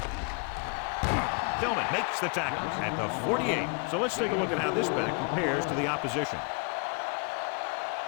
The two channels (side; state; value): right; quieter; 34.8 dB